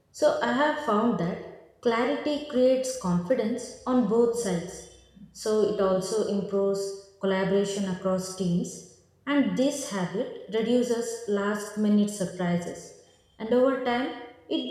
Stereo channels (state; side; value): identical; both; correlation 1.00